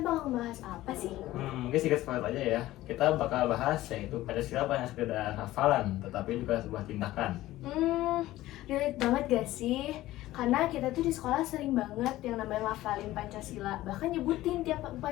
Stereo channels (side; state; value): right; quieter; 16.0 dB